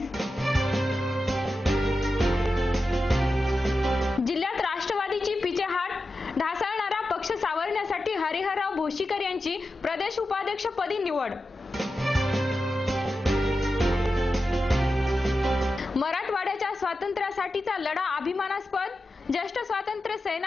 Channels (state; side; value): normal; both; correlation 0.91